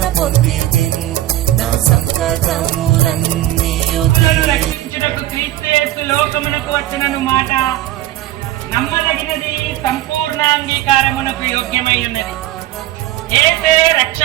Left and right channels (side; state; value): left; quieter; 14.7 dB